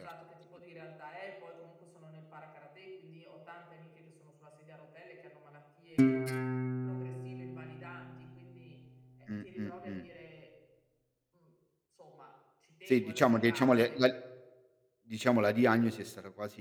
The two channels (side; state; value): both; identical; correlation 1.00